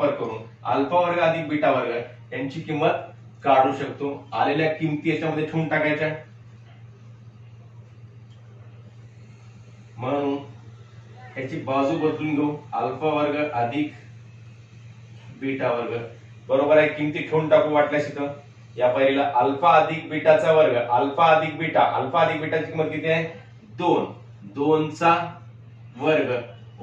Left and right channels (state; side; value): identical; both; correlation 1.00